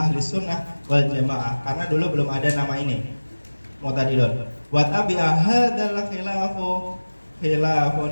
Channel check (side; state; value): both; inverted; correlation -1.00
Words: sunnah wal jamaah. Karena dulu belum ada nama ini, mu'tadilun. Wa tabi'a hadzal